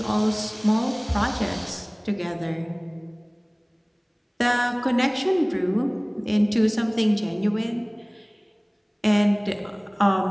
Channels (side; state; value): both; identical; correlation 1.00